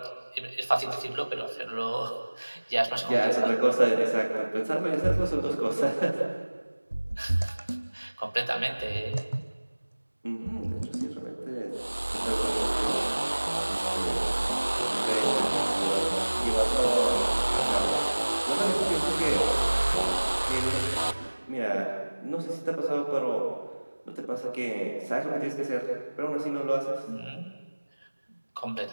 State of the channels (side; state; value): both; inverted; correlation -1.00